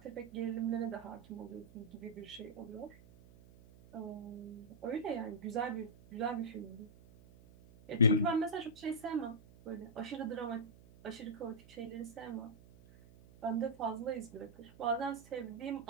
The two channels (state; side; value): noise; right; hum, 21 dB below the sound